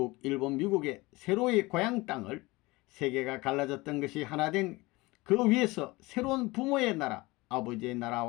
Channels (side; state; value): right; quieter; 22.0 dB